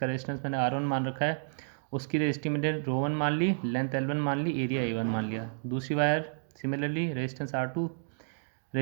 रेजिस्टेंस मैंने R1 मान रखा है, उसकी रेजिस्टिविटी रो 1 मान ली, लेंथ L1 मान ली, एरिया A1 मान लिया। दूसरी wire similarly resistance R2,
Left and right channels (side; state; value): left; silent; digital silence